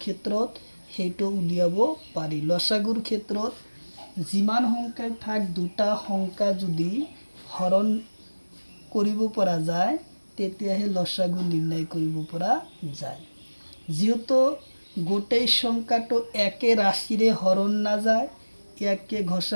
ক্ষেত্ৰত সেইটো উলিয়াব পাৰি। লসাগুৰ ক্ষেত্ৰত যিমান সংখ্যাই থাক দুটা সংখ্যা যদি হৰণ কৰিব পৰা যায় তেতিয়াহে লসাগু নিৰ্ণয় কৰিব পৰা যায়। যেহেতু গোটেই সংখ্যাটো একে রাশিরে হরণ না যায়, ইয়াকে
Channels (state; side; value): inverted; both; correlation -1.00